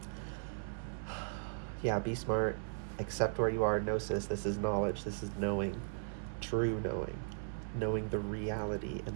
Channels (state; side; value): silent; left; 53 dB below the other